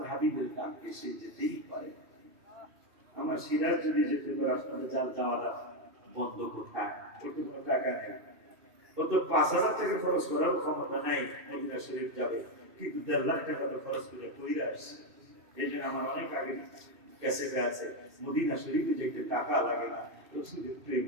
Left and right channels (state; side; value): late; left; 2.6 ms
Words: হাবিবের ডাক এসে যেতেই পারে। আমার সিরাজ যদি যেতে পারে, আপনাদের যাওয়াটা বন্ধ কোথায়? ওটা কোনো টাকা নেই, ও তো 5,000 টাকা খরচ করার ক্ষমতা নাই। মদিনা শরীফ যাবে, কিন্তু 1.5 লাখ টাকা তো খরচ করে কইরা আসছে। এই জন্য আমার অনেক আগে ক্যাসেটে আছে, মদিনা শরীফে যেতে টাকা লাগে না, রসুলের প্রেম